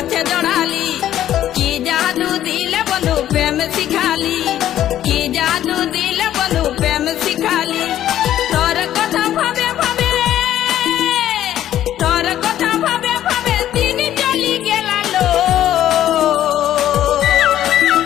জড়ালি কি জাদু দিলে বন্ধু প্রেম শিখালি কি জাদু দিলে বন্ধু প্রেম শিখালি তোর কথা ভাবে ভাবে তোর কথা ভাবে ভাবে দিন চলি গেলালো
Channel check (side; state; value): right; quieter; 12.0 dB